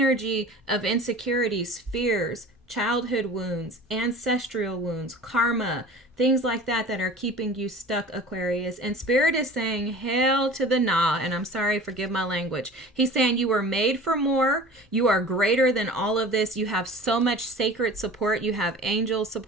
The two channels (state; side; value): normal; both; correlation 0.40